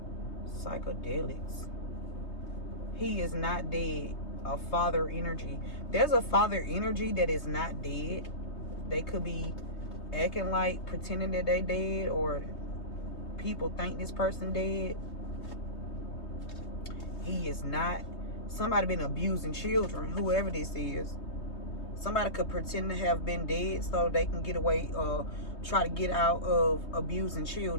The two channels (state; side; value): late; right; 3.2 ms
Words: He is not dead. A father energy. There's a father energy that is not dead. They could be acting like, pretending that they dead, or people think this person dead. He is not Somebody been abusing children, whoever this is. Somebody could pretend to have been dead so they can get away or try to get out of abusing